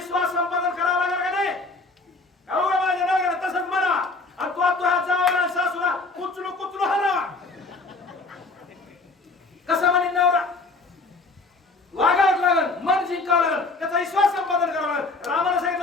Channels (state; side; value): quieter; right; 3.5 dB